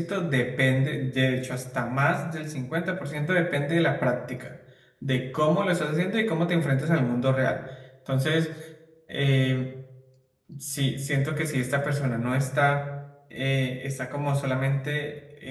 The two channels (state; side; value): identical; both; correlation 1.00